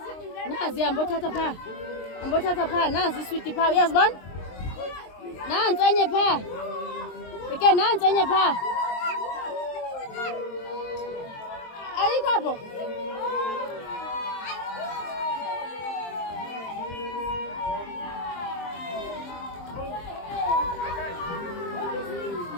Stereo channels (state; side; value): late; right; 23 ms